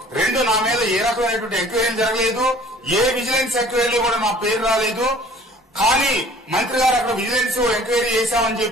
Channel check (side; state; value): both; normal; correlation 0.51